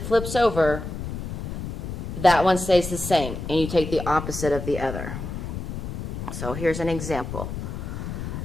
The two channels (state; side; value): noise; left; rumble, 6 dB below the sound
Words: flips over, that one stays the same, and you take the opposite of the other. So here's an example.